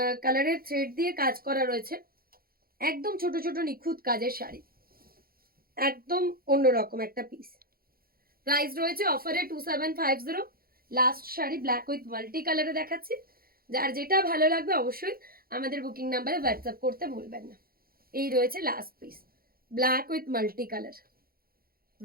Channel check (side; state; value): left; late; 0.43 ms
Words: কালারের থ্রেড দিয়ে কাজ করা রয়েছে। একদম ছোট ছোট নিখুঁত কাজের শাড়ি, একদম অন্যরকম একটা পিস। প্রাইস রয়েছে অফারে 2750। Last sari black with multi কালারে দেখাচ্ছি। যার যেটা ভালো লাগবে অবশ্যই আমাদের বুকিং নাম্বারে হোয়াটসঅ্যাপ করতে ভুলবেন না। এই রয়েছে last piece, black with multi colour.